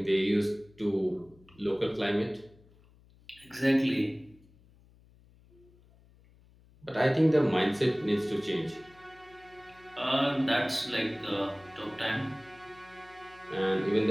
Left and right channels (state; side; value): noise; left; hum, 27 dB below the sound